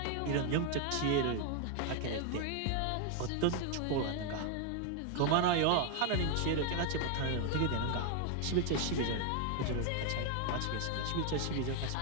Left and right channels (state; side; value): different; both; correlation 0.00